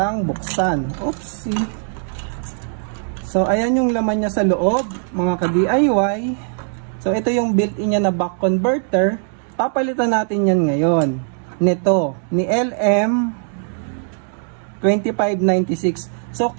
buksan. Oopsie. So, ayan yung laman niya sa loob, mga ka-DIY. So, ito yung built-in niya na buck converter. Papalitan natin yan ngayon. Nito, ni LM2596. So,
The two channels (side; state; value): left; silent; digital silence